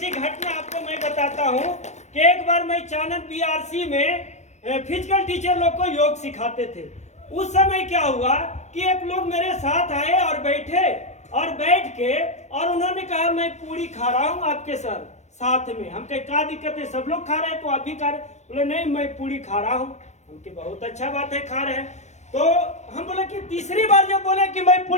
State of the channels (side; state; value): right; late; 0.34 ms